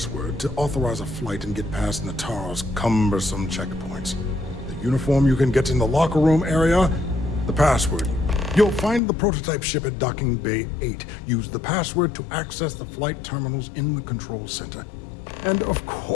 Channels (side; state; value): right; drops out; at 9.0 s